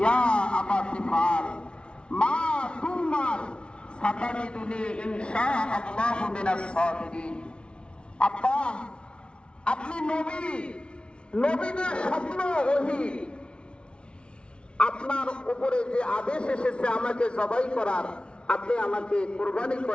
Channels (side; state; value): right; late; 0.058 ms